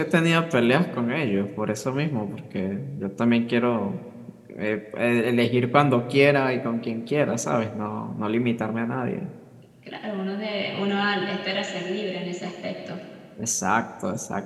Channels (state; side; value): identical; both; correlation 1.00